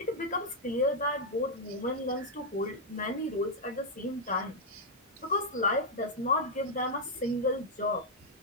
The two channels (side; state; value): both; normal; correlation -0.04